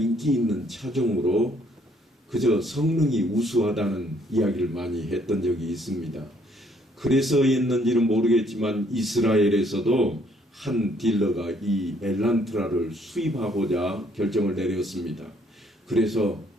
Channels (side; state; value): both; normal; correlation 0.66